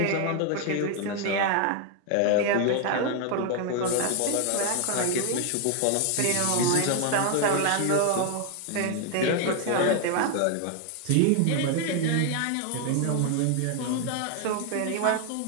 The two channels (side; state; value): both; different; correlation 0.00